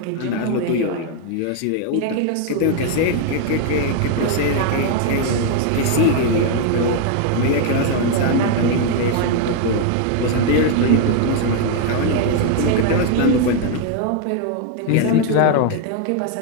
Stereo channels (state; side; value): different; both; correlation 0.00